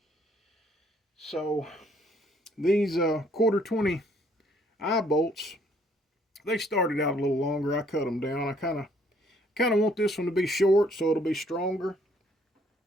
So these 1/4 eye bolts, they started out a little longer. I cut them down. I kind of want this one to be short so it'll be stronger.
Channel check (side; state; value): both; normal; correlation 0.65